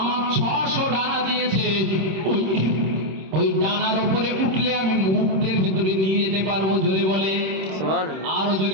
600 ডানা দিয়েছে। ওই ডানার উপরে উঠলে আমি মুহূর্তের ভিতরে নিয়ে যেতে পারবো। জোরে বলে সুবহানাল্লাহ। আরো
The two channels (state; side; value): late; left; 26 ms